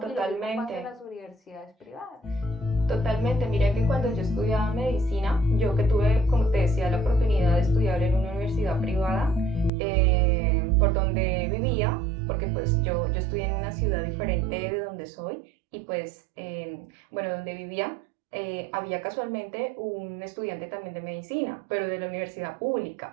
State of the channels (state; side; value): drops out; left; at 9.7 s